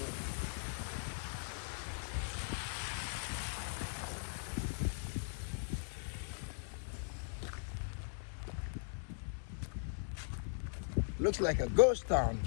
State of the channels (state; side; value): silent; right; 51 dB below the other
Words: Looks like a ghost town.